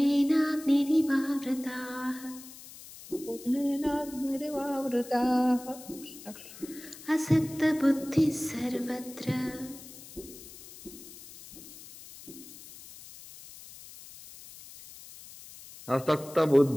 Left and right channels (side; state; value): left; noise; hiss, 17 dB below the sound